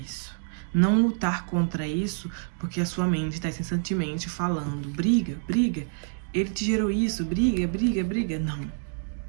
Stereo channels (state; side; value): silent; left; 60 dB below the other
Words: Não lutar contra isso, porque a sua mente está incessantemente falando, briga, briga, ele te gerou isso, briga, briga, briga. Não.